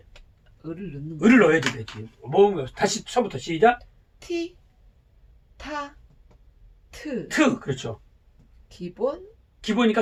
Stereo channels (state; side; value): identical; both; correlation 1.00